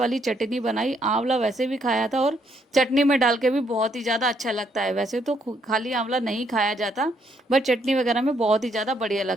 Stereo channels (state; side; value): normal; both; correlation 0.72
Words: चटनी बनाई। आंवला वैसे भी खाया था और चटनी में डाल के भी बहुत ही ज़्यादा अच्छा लगता है। वैसे तो खाली आंवला नहीं खाया जाता, बट चटनी वगैरह में बहुत ही ज़्यादा बढ़िया